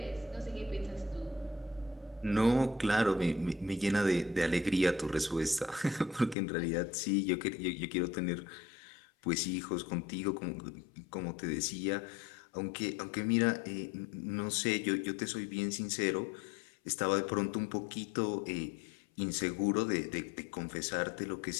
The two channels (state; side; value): drops out; right; at 6.4 s